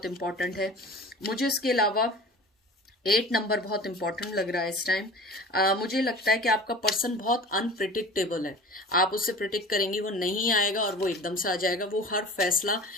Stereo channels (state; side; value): normal; both; correlation 0.39